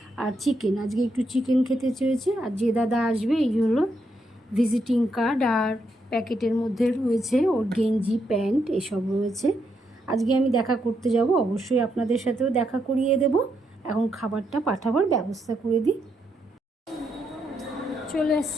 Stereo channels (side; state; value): both; normal; correlation 0.79